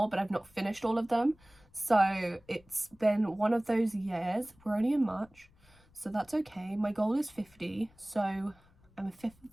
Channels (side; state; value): left; noise; rumble, 29 dB below the sound